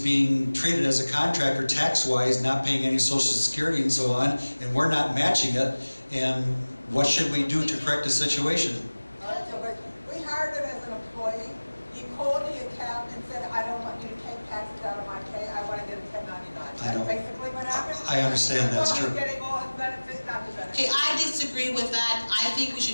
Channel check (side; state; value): both; inverted; correlation -1.00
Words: being treated as a contractor tax-wise, not paying any Social Security and so on, and we're not matching it. And what should we do to correct the situation? We hired him as an employee. He called the accountant and said, I don't want you to take taxes out of my pay. I want to get a 1099. That's basically what happened. I understand that's true. He's getting all his benefits, not the benefits. Okay, I disagree with that. I think we